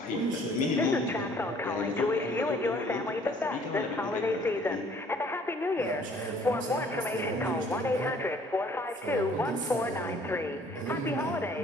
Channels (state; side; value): normal; both; correlation 0.57